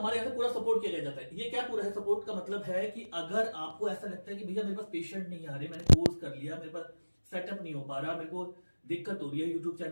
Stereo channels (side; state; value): both; inverted; correlation -1.00